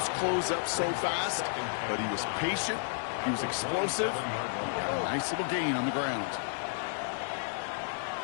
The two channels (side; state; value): right; silent; digital silence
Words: close up so fast, but he was patient, he was explosive, he got a nice little gain on the ground.